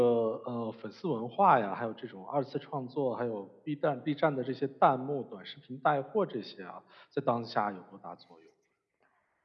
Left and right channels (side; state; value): both; identical; correlation 1.00